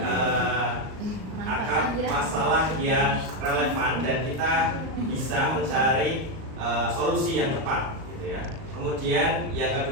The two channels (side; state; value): left; late; 38 ms